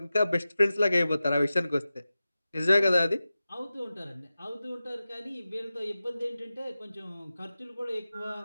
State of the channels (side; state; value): both; inverted; correlation -0.94